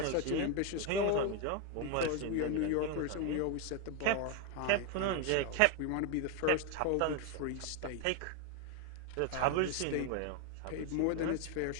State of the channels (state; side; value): different; both; correlation 0.01